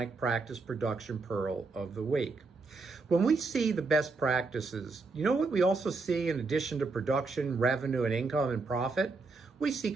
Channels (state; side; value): quieter; left; 3.9 dB